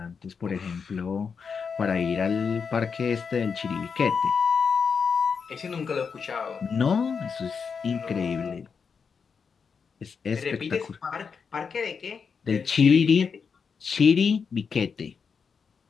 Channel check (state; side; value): quieter; right; 5.9 dB